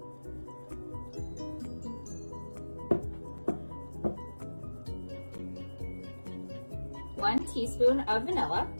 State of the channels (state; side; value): inverted; both; correlation -1.00